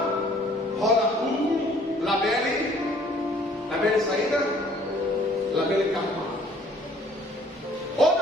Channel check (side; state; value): both; normal; correlation 0.58